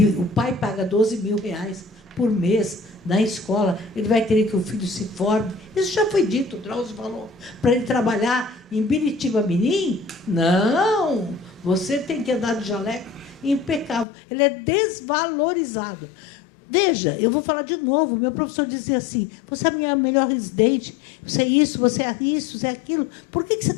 o pai paga R$12.000 por mês na escola, ele vai querer que o filho se forme? Isso já foi dito, o Drauzio falou. Para ele trabalhar em Biritiba-Mirim? Não! Você tem que andar de jaleco impecável. Ele é desvalorizado. Veja, eu vou falar de novo. Meu professor dizia assim: você é a minha melhor residente, você é isso, você é isso, você é aquilo. Por que você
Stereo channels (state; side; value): drops out; right; at 14.1 s